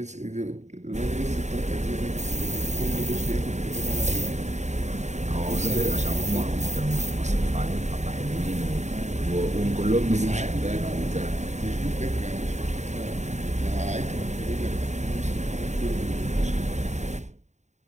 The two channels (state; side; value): late; left; 0.34 ms